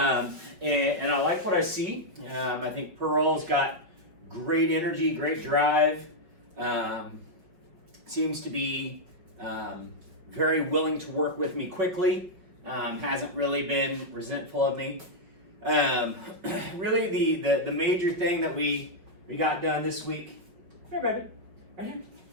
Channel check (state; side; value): late; left; 5.6 ms